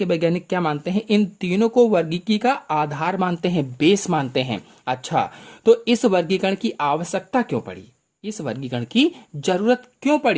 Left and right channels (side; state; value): both; identical; correlation 1.00